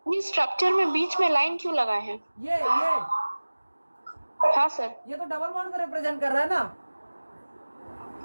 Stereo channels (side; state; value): both; inverted; correlation -1.00